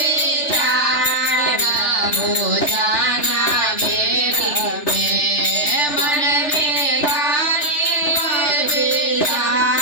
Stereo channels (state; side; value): late; right; 3.3 ms